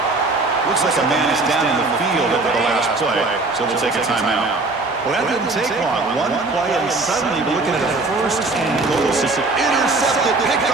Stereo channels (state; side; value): quieter; left; 3.3 dB